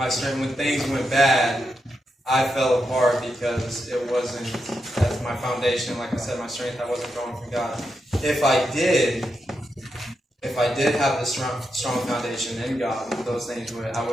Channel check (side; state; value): both; normal; correlation 0.85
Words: things went bad, I fell apart because it wasn't as my foundation. Like I said, my strength, I wasn't going from God. If I did have the strong foundation in God, those things I